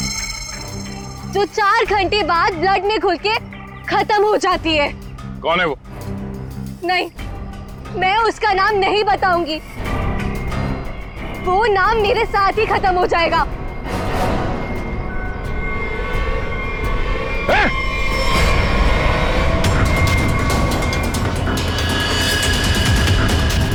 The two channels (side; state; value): both; identical; correlation 1.00